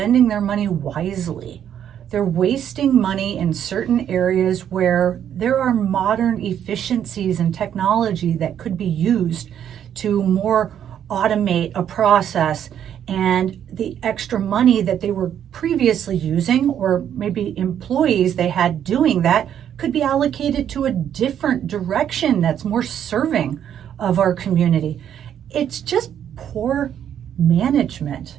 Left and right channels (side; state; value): left; quieter; 9.6 dB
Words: their money wisely. They're wasting money in certain areas where there are modern efficiencies and technology that could be used to more automate a process, and the extra money that they were previously using, or maybe employees they had doing that, could be allocated to a different direction that's more serving of our community. It's just poor management